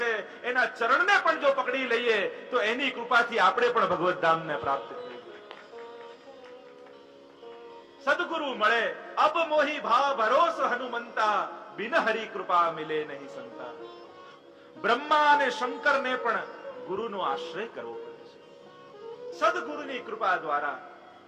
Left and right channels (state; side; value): identical; both; correlation 1.00